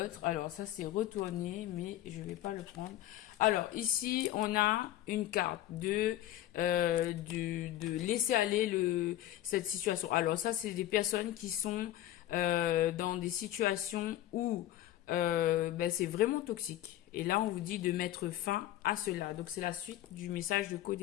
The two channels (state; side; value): quieter; right; 13.9 dB